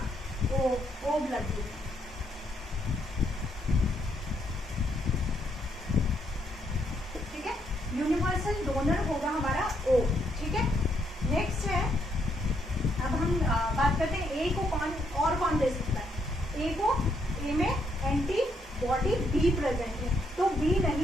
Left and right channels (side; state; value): both; normal; correlation 0.75